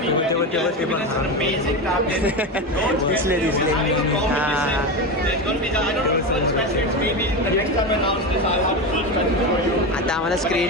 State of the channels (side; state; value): both; normal; correlation 0.18